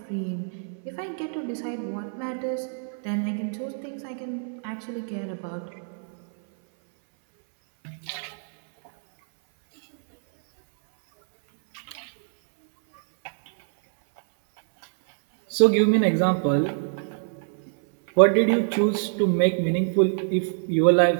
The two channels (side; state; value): left; silent; 62 dB below the other